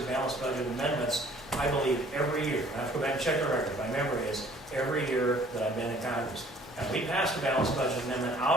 balanced budget amendments, I believe, every year. I have to go back and check the record. My memory is every year that I've been in Congress. And we passed a balanced budget amendment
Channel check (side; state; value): both; normal; correlation 0.55